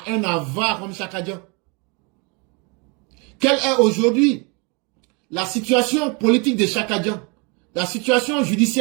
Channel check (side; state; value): left; quieter; 31.8 dB